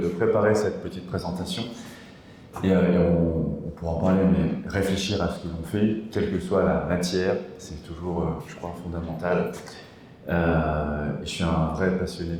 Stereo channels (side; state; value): both; identical; correlation 1.00